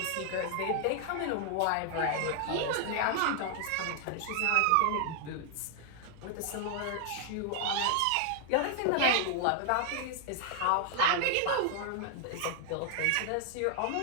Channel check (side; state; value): both; different; correlation 0.00